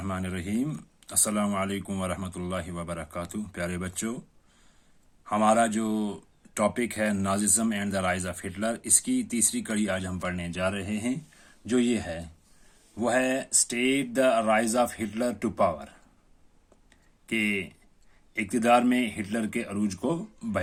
الرحیم۔ السلام علیکم ورحمۃ اللہ وبرکاتہ۔ پیارے بچوں، ہمارا جو ٹاپک ہے Nazism and the rise of Hitler, اس کی تیسری کڑی آج ہم پڑھنے جا رہے ہیں، جو یہ ہے وہ ہے state the rise of Hitler to power, کہ اقتدار میں ہٹلر کے عروج کو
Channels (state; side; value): identical; both; correlation 1.00